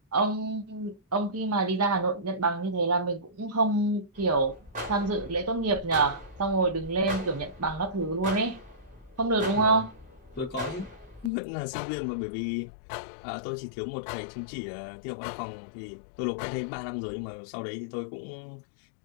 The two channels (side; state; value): right; drops out; at 11.3 s